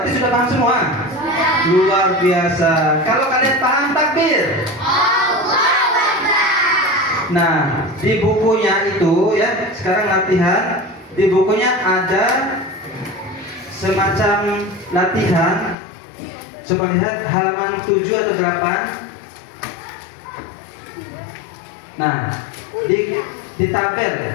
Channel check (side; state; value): right; drops out; at 15.8 s